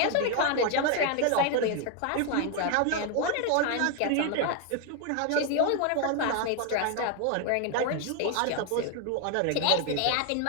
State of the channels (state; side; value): different; both; correlation 0.01